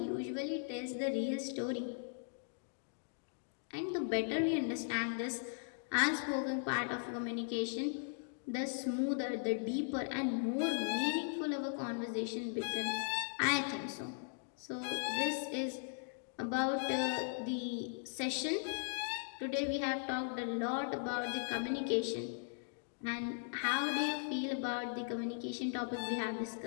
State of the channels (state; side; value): silent; right; digital silence